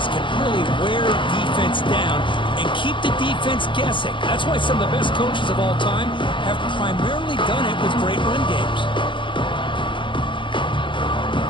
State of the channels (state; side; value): late; right; 0.24 ms